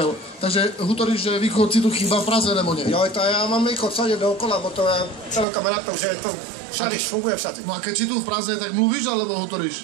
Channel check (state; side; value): drops out; left; at 5.5 s